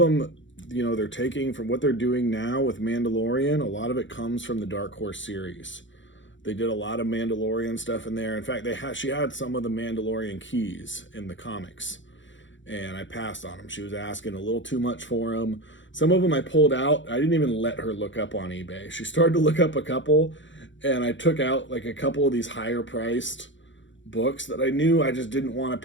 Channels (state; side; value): late; right; 0.55 ms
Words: they're taking from what they're doing now with Mandalorian. A lot of it comes from the Dark Horse series. They did a lot of Mandalorian stuff in there. In fact, she had some of the Mandalorian keys in the comics, and I passed on them. She was asking a little too much for them. Some of them I pulled out. I didn't even let her look up on eBay. She started to look up a couple, and I took out like a couple of these higher priced books that I knew I just didn't want